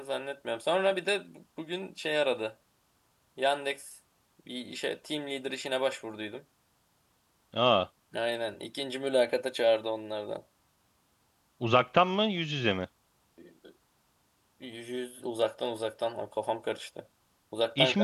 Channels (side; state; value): both; identical; correlation 1.00